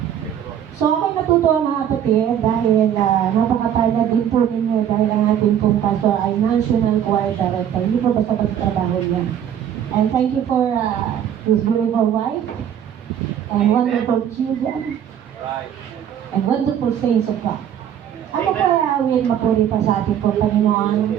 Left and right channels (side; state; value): left; quieter; 9.7 dB